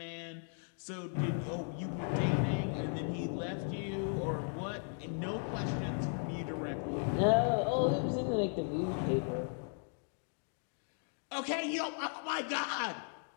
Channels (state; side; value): silent; right; 53 dB below the other